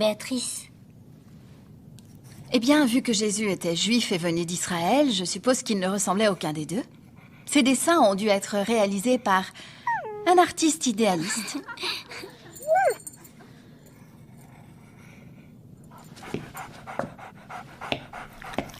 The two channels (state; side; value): identical; both; correlation 1.00